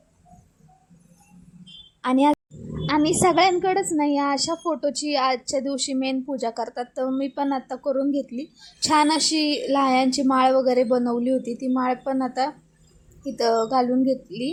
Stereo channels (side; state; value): both; identical; correlation 1.00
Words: आणि सगळ्यांकडेच नाही अशा फोटोची आजच्या दिवशी मेन पूजा करतात. तर मी पण आता करून घेतली. छान अशी लाह्यांची माळ वगैरे बनवली होती. ती माळ पण आता इथं घालून